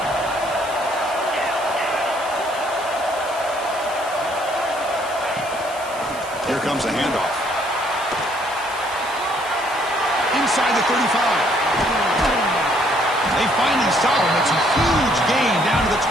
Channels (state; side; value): noise; left; hiss, 17 dB below the sound